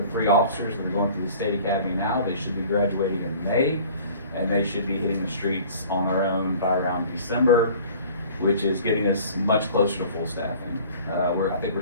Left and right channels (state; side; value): inverted; both; correlation -0.48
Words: 3 officers that are going through the state academy now. They should be graduating in May, and they should be hitting the streets on their own by around December, which is getting us much closer to full staffing. I think we're